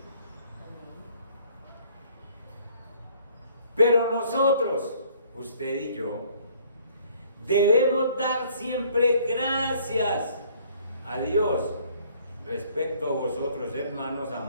Pero nosotros, usted y yo, debemos dar siempre gracias a Dios respecto a vosotros, hermanos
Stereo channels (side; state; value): both; inverted; correlation -0.59